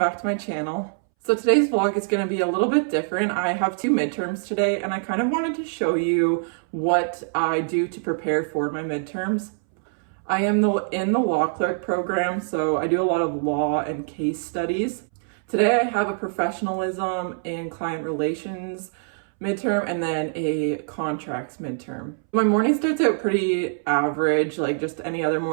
to my channel. So today's vlog is going to be a little bit different. I have two midterms today and I kind of wanted to show you what I do to prepare for my midterms. I am in the law clerk program, so I do a lot of law and case studies. Today I have a professionalism and client relations midterm and then a contracts midterm. My morning starts out pretty average, like just any other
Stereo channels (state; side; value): silent; left; 62 dB below the other